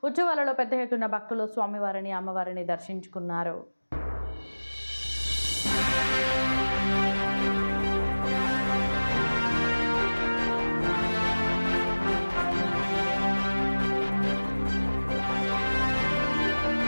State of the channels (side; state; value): both; inverted; correlation -1.00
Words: ఉత్సవాలలో పెద్ద ఎత్తున భక్తులు స్వామివారిని అమ్మవారిని దర్శించుకున్నారు.